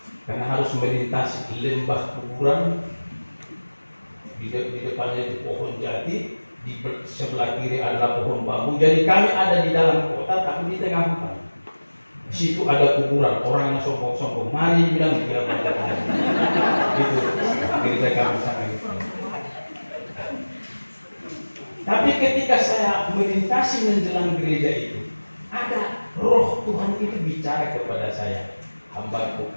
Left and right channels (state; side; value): inverted; both; correlation -1.00